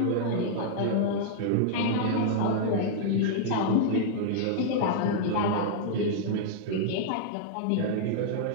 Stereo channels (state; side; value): different; both; correlation -0.01